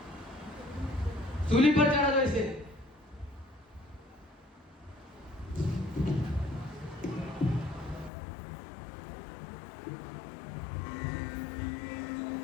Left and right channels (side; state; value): right; drops out; at 8.1 s